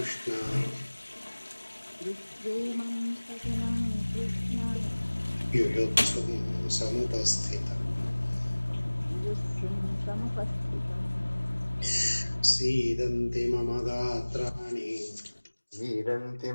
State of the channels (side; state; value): both; inverted; correlation -1.00